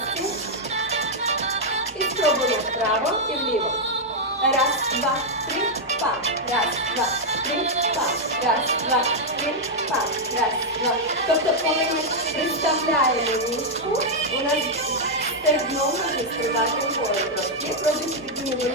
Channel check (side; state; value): both; normal; correlation -0.03